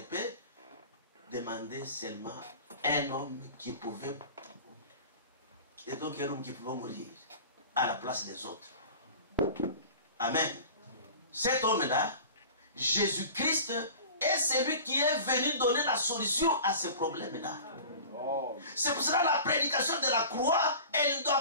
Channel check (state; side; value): inverted; both; correlation -0.39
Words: demandaient seulement un homme qui pouvait, et donc un homme qui pouvait mourir à la place des autres. Amen. Cet homme-là, Jésus-Christ, est celui qui est venu donner la solution à ce problème-là. C'est pour cela que la prédication de la croix, elle ne